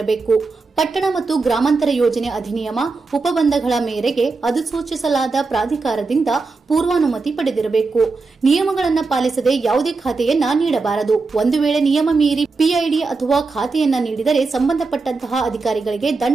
ಪಟ್ಟಣ ಮತ್ತು ಗ್ರಾಮಾಂತರ ಯೋಜನೆ ಅಧಿನಿಯಮ ಉಪಬಂಧಗಳ ಮೇರೆಗೆ ಅಧಿಸೂಚಿಸಲಾದ ಪ್ರಾಧಿಕಾರದಿಂದ ಪೂರ್ವಾನುಮತಿ ಪಡೆದಿರಬೇಕು. ನಿಯಮಗಳನ್ನು ಪಾಲಿಸದೆ ಯಾವುದೇ ಖಾತೆಯನ್ನ ನೀಡಬಾರದು. ಒಂದು ವೇಳೆ ನಿಯಮ ಮೀರಿ ಪಿಐಡಿ ಅಥವಾ ಖಾತೆಯನ್ನ ನೀಡಿದರೆ ಸಂಬಂಧಪಟ್ಟಂತಹ ಅಧಿಕಾರಿಗಳಿಗೆ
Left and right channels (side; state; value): left; quieter; 4.0 dB